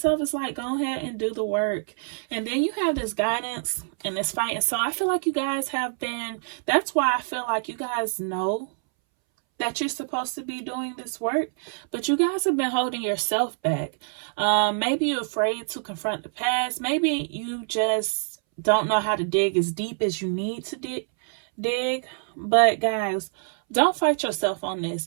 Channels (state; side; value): silent; left; 61 dB below the other